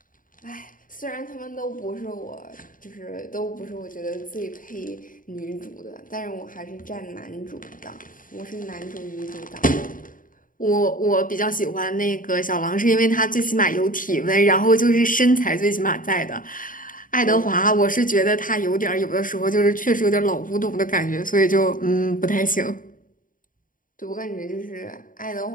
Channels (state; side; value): late; right; 0.39 ms